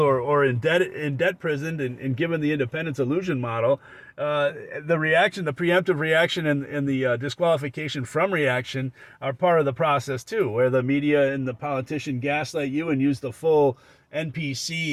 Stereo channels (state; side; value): identical; both; correlation 1.00